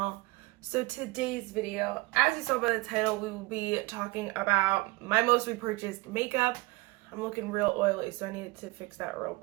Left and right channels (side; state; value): left; quieter; 22.1 dB